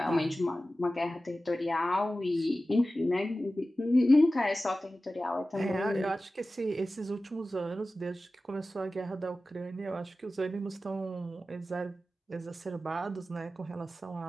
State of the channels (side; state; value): both; normal; correlation 0.95